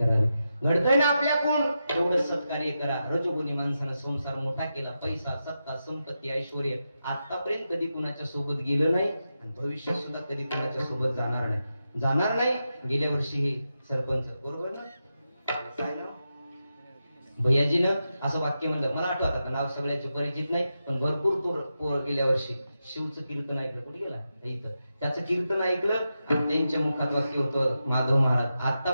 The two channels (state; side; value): inverted; both; correlation -0.89